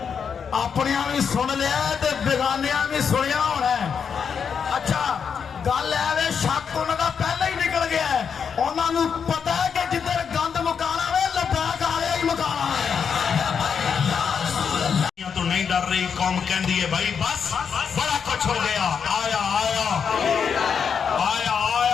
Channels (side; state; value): right; quieter; 6.7 dB